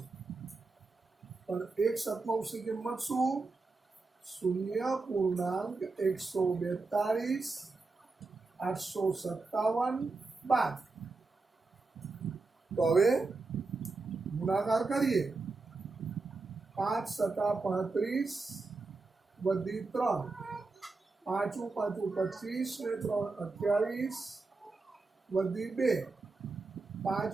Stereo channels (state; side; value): quieter; left; 3.8 dB